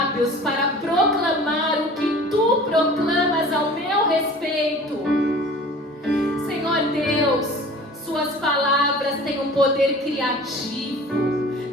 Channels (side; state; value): both; normal; correlation 0.43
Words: para proclamar o que Tu proclamas ao meu respeito. Senhor Deus, Suas palavras têm um poder criativo,